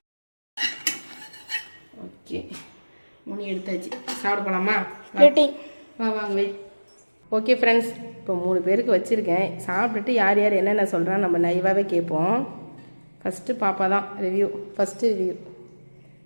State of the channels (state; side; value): inverted; both; correlation -1.00